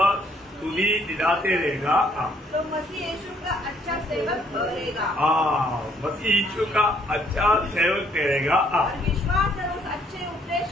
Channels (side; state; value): both; normal; correlation 0.66